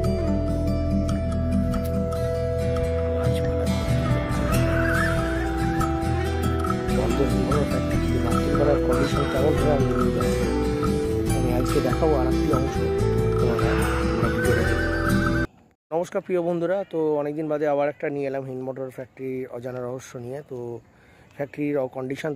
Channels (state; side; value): identical; both; correlation 1.00